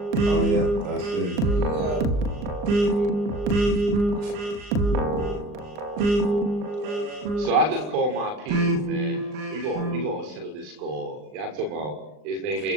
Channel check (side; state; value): left; late; 39 ms